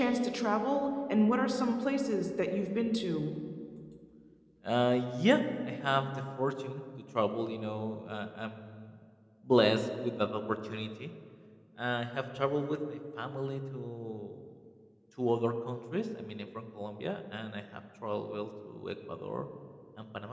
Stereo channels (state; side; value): identical; both; correlation 1.00